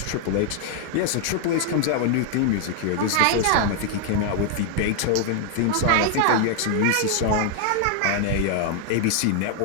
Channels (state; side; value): different; both; correlation 0.00